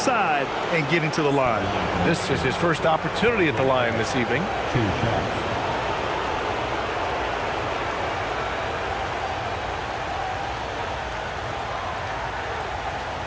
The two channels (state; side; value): identical; both; correlation 1.00